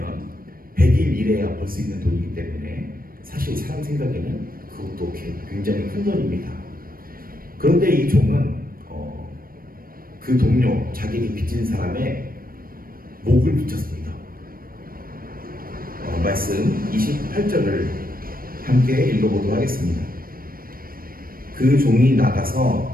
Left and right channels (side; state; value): left; late; 0.42 ms